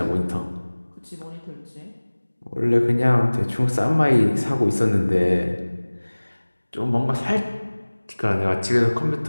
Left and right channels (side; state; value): both; inverted; correlation -1.00